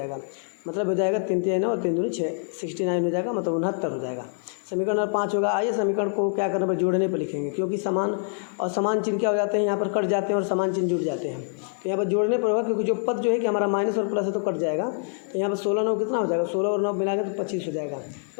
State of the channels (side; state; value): right; silent; digital silence